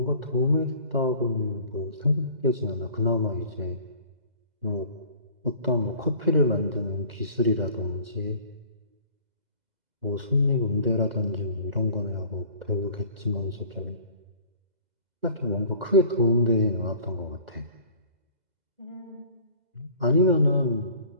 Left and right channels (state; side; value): late; left; 2.0 ms